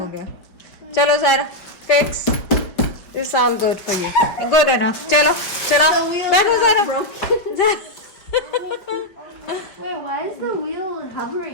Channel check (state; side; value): late; right; 5.0 ms